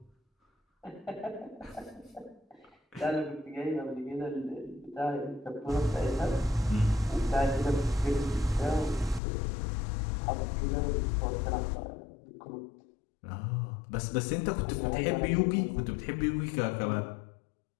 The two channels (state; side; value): drops out; right; at 9.2 s